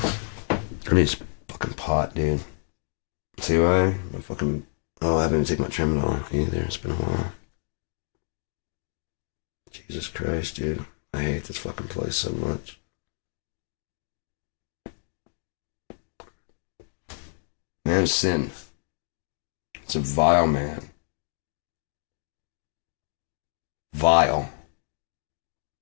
need this fucking pot, dude. See why? I'm fucking. Oh, I haven't even taken my Tramadol either. It's been a while. Jesus Christ, dude. I hate this fucking place so much. Man of sin. It's a vile man. Vile.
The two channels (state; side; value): silent; right; digital silence